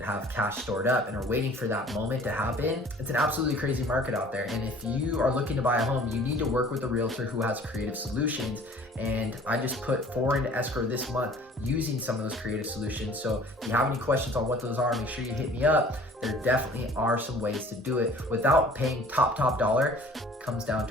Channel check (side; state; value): both; normal; correlation 0.50